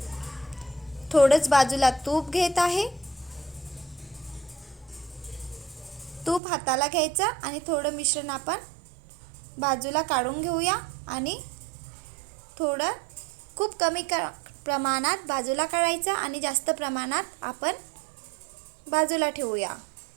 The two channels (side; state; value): left; drops out; at 6.4 s